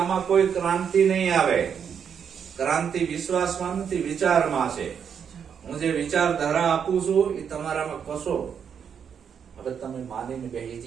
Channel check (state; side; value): quieter; left; 7.5 dB